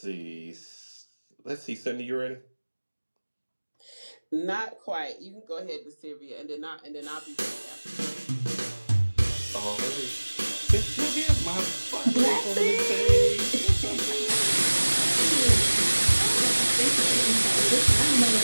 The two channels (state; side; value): inverted; both; correlation -1.00